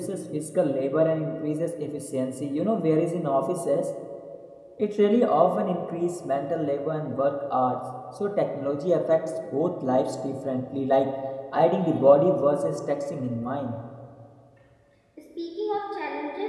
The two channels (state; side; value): identical; both; correlation 1.00